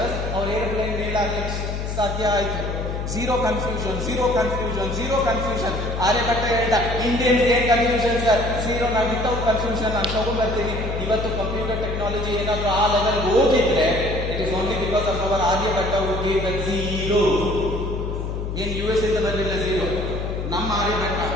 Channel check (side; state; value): left; noise; hum, 4 dB below the sound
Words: ಅವ್ರ ಏರೋಪ್ಲೇನ್ ಮೇಲೆ ಸಾಧ್ಯ ಆಯ್ತು. Zero confusion. ಆರ್ಯಭಟ್ಟ ಹೇಳ್ದ ಇಂಡಿಯನ್ಸ್ ಏನ್ ಕನ್ಫ್ಯೂಷನ್ ಸರ್, ಝೀರೋ ನಾವು ವಿತೌಟ್ ಕನ್ಫ್ಯೂಷನ್ ನಾನು ತಗೊಂಡ್ಬರ್ತೀನಿ. ಇವತ್ತು ಕಂಪ್ಯೂಟರ್ ಟೆಕ್ನಾಲಜಿ ಏನಾದ್ರು ಆ ಲೆವೆಲ್ ಹೋಗಿದ್ರೆ it is only because of our Aryabhatta who gave the zero. ಏನ್ US ಇಂದ ಬರಲಿಲ್ಲ ಝೀರೋ, ನಮ್ಮ ಆರ್ಯಭಟ್ಟ